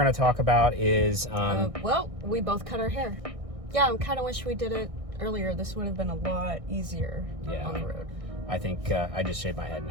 to talk about is... well, we both cut our hair. Yeah, I kind of wish we did it earlier. This would have been a lot easier on the road. I think I just shaved my head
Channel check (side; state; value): left; late; 1.6 ms